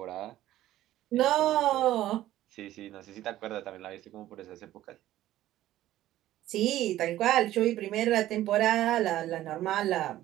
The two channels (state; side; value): quieter; left; 14.1 dB